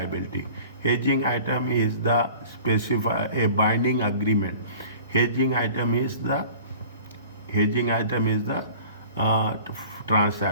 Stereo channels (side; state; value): both; inverted; correlation -0.45